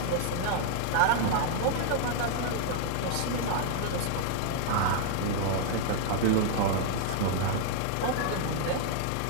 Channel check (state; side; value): different; both; correlation -0.01